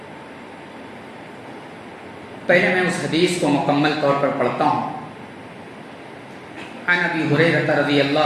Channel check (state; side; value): identical; both; correlation 1.00